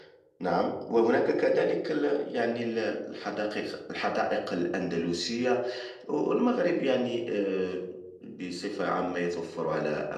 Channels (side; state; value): both; identical; correlation 1.00